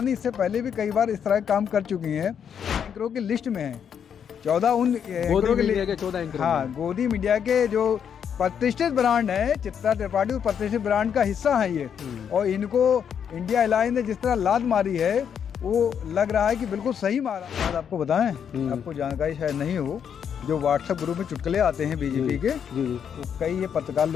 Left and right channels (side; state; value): right; quieter; 8.0 dB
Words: नहीं, इससे पहले भी कई बार इस तरह के काम कर चुकी हैं। एंकरों की लिस्ट में है 14 उन एंकरों के 14 एंकर। हाँ, गोदी मीडिया के जो प्रतिष्ठित ब्रांड है, चित्रा त्रिपाठी उस प्रतिष्ठित ब्रांड का हिस्सा है ये। और इनको इंडिया अलायंस ने जिस तरह लात मारी है वो लग रहा है कि बिल्कुल सही मारा। बात आपको बताएं, आपको जानकारी शायद नहीं हो, जो व्हाट्सएप ग्रुप में चुटकुले आते हैं बीजेपी के, तो कई ये पत्रकार